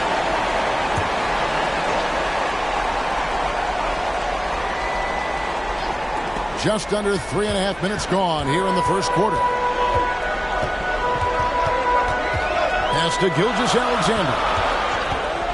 just under 3.5 minutes gone here in the first quarter. Pass to Gilgeous-Alexander.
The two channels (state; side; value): noise; left; hum, 23 dB below the sound